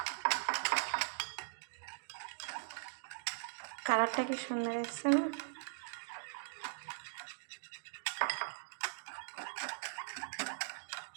কালারটা কি সুন্দর এসছে না?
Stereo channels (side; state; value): left; silent; digital silence